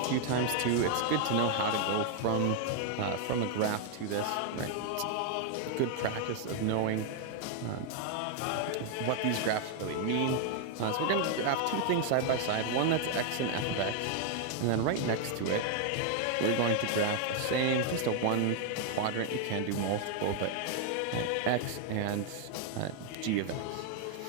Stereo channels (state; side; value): different; both; correlation 0.00